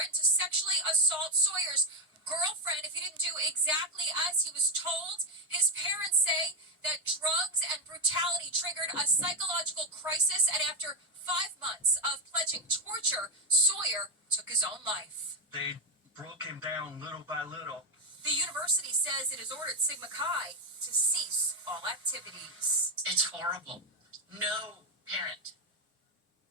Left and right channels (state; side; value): normal; both; correlation 0.04